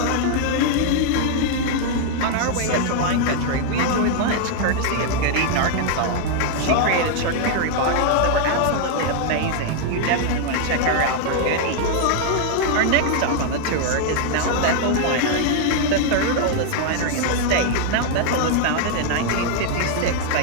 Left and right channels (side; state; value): both; different; correlation 0.00